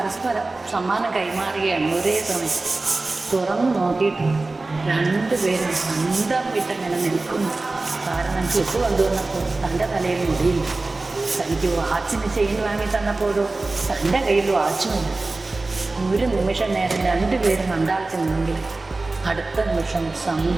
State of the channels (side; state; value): left; quieter; 3.3 dB